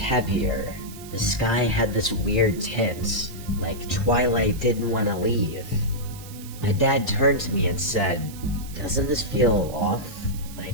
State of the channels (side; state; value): right; noise; hiss, 17 dB below the sound